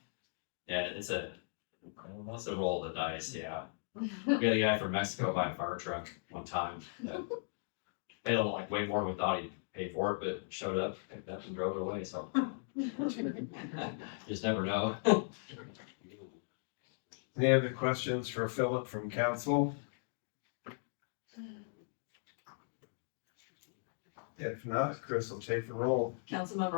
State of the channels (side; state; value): right; silent; digital silence